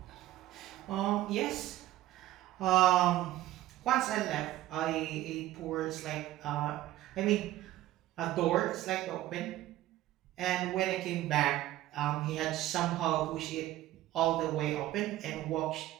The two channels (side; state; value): left; quieter; 15.1 dB